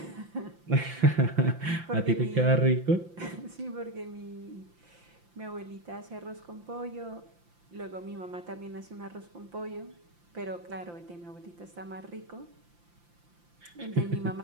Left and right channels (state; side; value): late; left; 5.8 ms